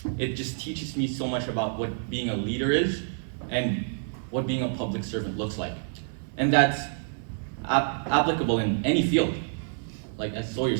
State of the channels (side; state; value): left; silent; 58 dB below the other